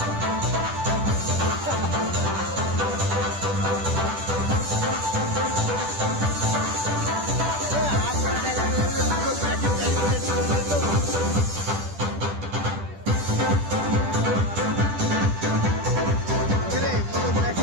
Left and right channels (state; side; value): late; left; 10 ms